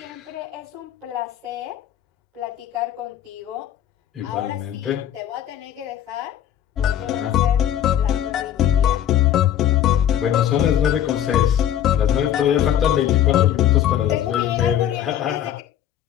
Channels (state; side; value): quieter; right; 10.7 dB